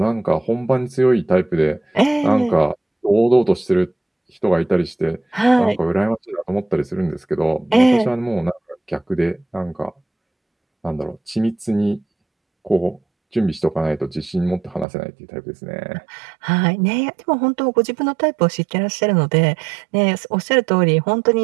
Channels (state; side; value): drops out; left; at 14.9 s